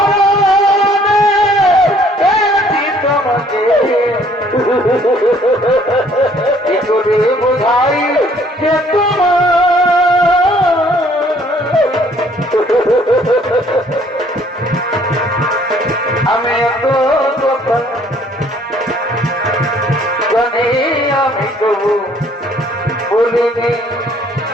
তোমাকে কি করে বোঝাই যে তোমার আমি এত কথা জানি, আমি তবু বলিনি।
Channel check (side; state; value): both; normal; correlation 0.60